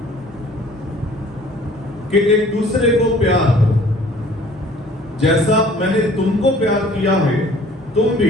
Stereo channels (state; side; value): normal; both; correlation 0.53